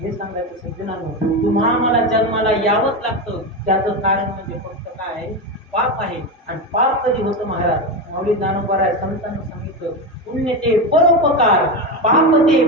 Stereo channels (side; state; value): both; normal; correlation 0.16